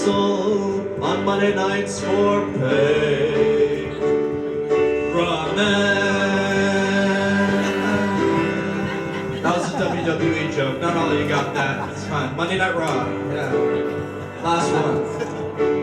on Monday nights for pay. Ramen. That was a WWE joke. Not all of you got that. It's fine. Monday Night Raw. Yeah. Last one.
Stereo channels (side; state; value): both; identical; correlation 1.00